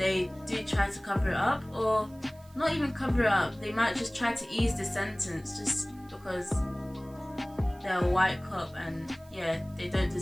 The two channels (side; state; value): right; noise; hiss, 27 dB below the sound